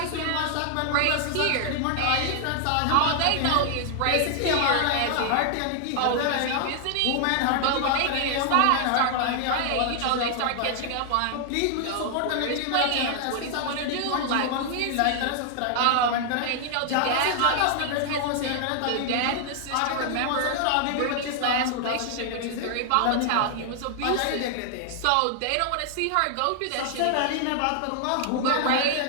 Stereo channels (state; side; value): different; both; correlation 0.00